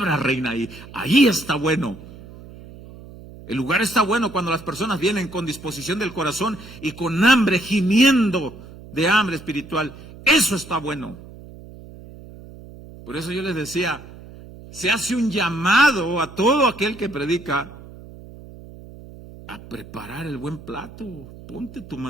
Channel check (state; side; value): noise; right; hum, 17 dB below the sound